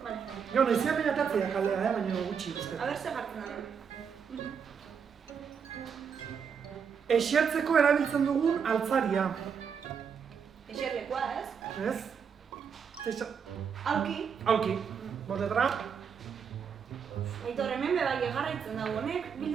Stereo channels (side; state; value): left; quieter; 6.8 dB